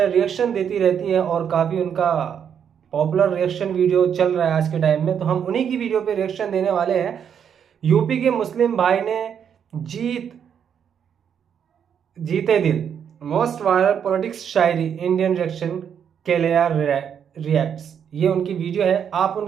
रिएक्शन देती रहती है और काफ़ी उनका पॉपुलर रिएक्शन वीडियो चल रहा है आज के टाइम में। तो हम उन्हीं की वीडियो पे रिएक्शन देने वाले हैं। यूपी के मुस्लिम भाई ने जीते दिल, मोस्ट वायरल पॉलिटिक्स शायरी, इंडियन रिएक्शन, केलेया रिएक्ट्स। ये उनकी वीडियो है। आप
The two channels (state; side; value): quieter; left; 8.1 dB